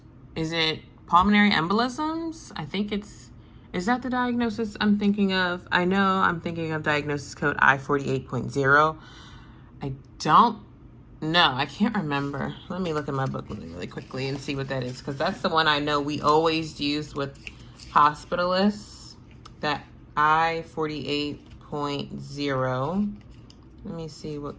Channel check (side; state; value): both; identical; correlation 1.00